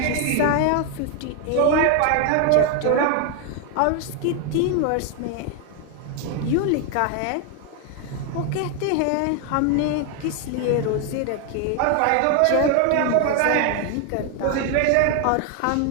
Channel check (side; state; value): both; different; correlation 0.01